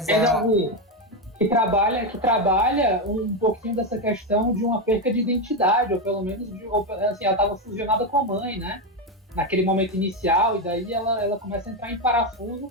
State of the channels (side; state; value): both; normal; correlation 0.09